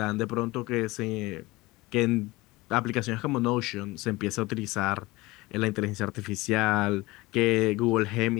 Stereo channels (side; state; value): right; quieter; 21.1 dB